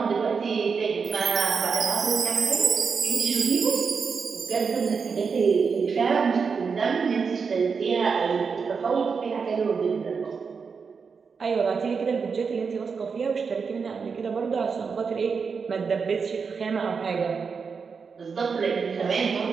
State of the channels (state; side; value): quieter; left; 5.5 dB